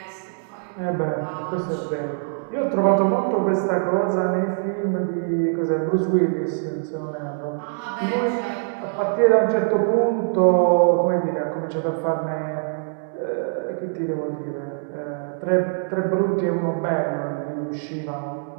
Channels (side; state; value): left; silent; digital silence